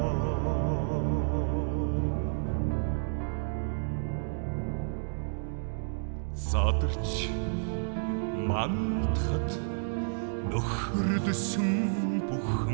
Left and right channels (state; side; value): silent; left; digital silence